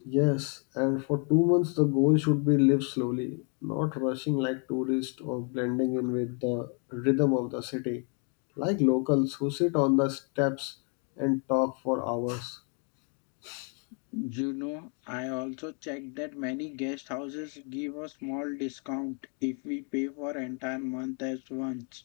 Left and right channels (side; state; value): right; quieter; 39.2 dB